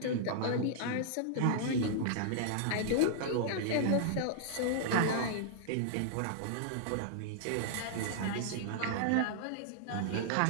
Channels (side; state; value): both; different; correlation -0.01